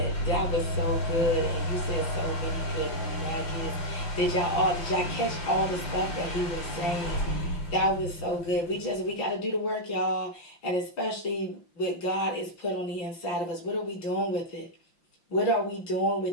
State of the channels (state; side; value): late; right; 5.8 ms